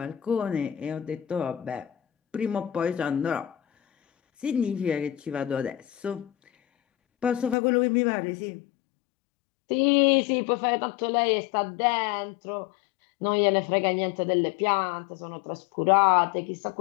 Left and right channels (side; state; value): right; drops out; at 7.6 s